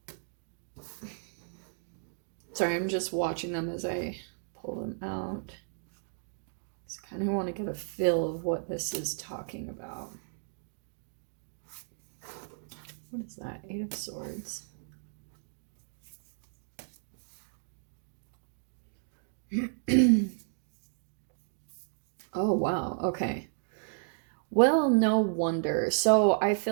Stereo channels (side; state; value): left; silent; digital silence